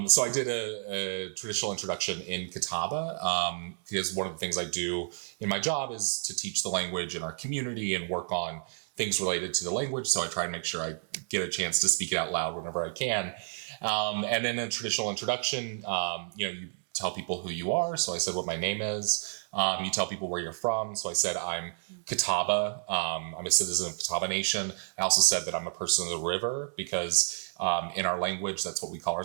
I did a traditional introduction in Catawba because one of the things I do in my job is to teach the language in our community and work on things related to the language. So I try to make sure I get a chance to speak it out loud whenever I can. And in a traditional introduction, you tell people who you are. So I said what my name is. You tell people where you're from. So I said I'm Catawba. I'm a citizen of Catawba Nation. I also said that I'm a person of the river because in our language, that's what we call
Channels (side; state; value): left; silent; 58 dB below the other